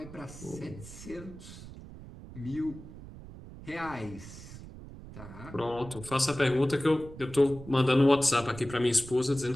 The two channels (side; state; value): right; noise; rumble, 15 dB below the sound